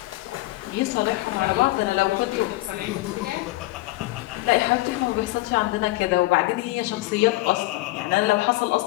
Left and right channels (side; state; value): right; quieter; 19.9 dB